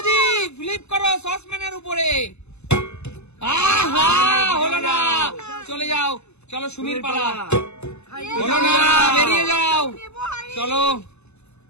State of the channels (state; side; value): late; right; 0.81 ms